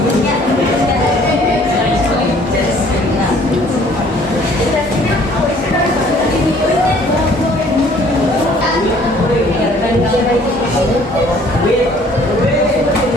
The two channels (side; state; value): both; normal; correlation 0.57